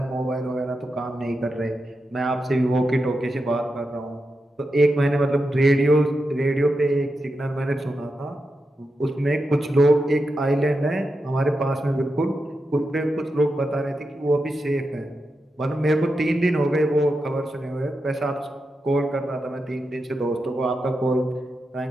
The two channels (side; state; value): both; normal; correlation 0.88